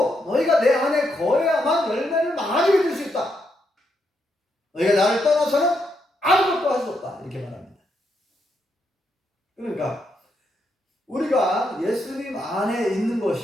너희가 내 안에 거해야만 열매를 많이 맺을 수 있다. 너희가 나를 떠나서는 아무것도 할 수 없다 이렇게 말합니다. 그러니까 우리가 예수님 안에 있는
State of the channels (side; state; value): both; normal; correlation 0.80